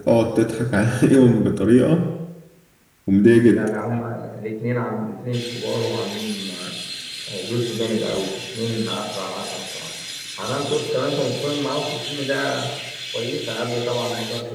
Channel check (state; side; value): identical; both; correlation 1.00